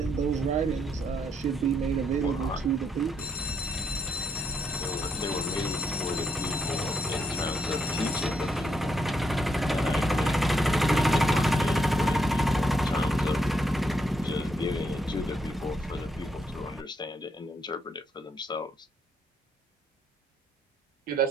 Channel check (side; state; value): both; normal; correlation 0.77